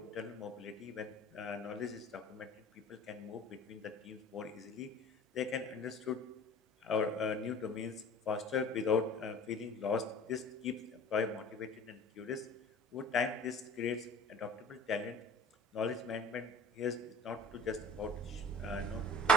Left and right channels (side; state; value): both; normal; correlation 0.44